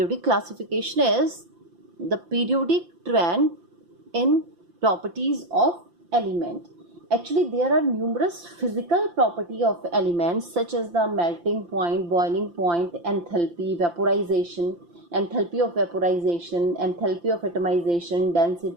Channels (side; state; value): left; late; 5.8 ms